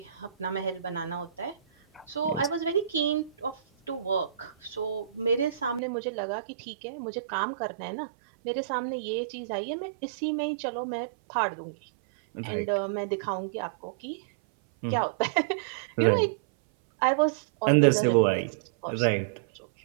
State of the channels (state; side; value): drops out; left; at 5.8 s